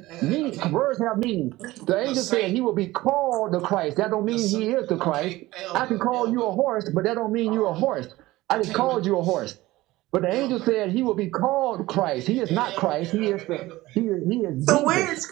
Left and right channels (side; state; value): left; quieter; 18.3 dB